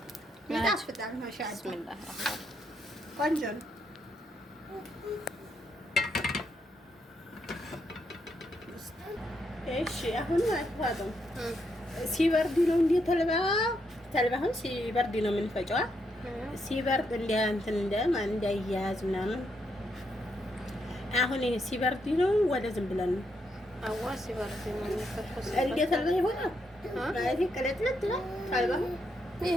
ይጣፍጣል። ማሻአላህ ቢስሚላህ ቆንጆ ነው። እሺ አሁን አትፋጠው ሲበርድ ነው እንዴ ተልባውን ሲበርድ ነው የምንፈጨው። ሲበርድ እንትን እንዳይያያዝ ምናምን። አሁን ይሄ ሲበርድ ነው ወደ ዝም ብለን ነው አዋ ሲበርድ ነው የሚፈጨው። እንዴ ተልባ ይሆናል ማለት ቅለጥለት ነው ተልባው።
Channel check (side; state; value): both; normal; correlation 0.79